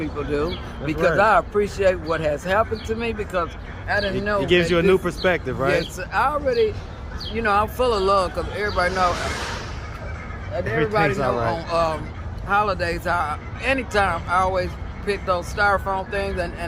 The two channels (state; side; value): identical; both; correlation 1.00